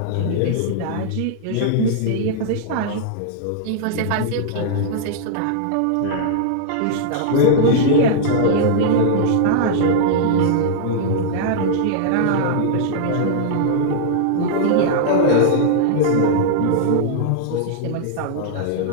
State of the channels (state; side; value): different; both; correlation -0.01